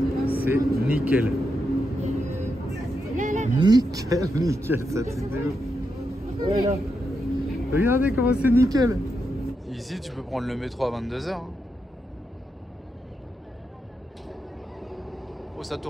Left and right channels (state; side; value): normal; both; correlation 0.85